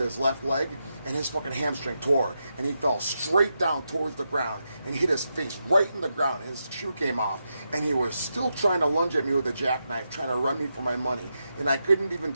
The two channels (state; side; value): inverted; both; correlation -0.86